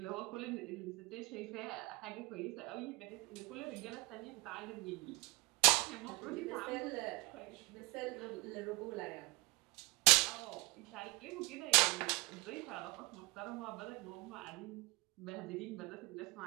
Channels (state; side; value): quieter; left; 25.7 dB